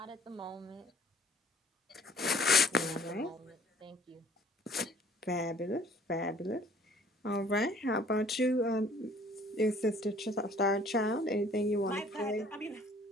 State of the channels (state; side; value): normal; both; correlation 0.55